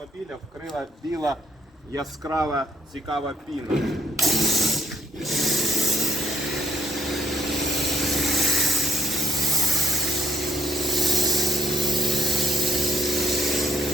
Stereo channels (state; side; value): normal; both; correlation 0.69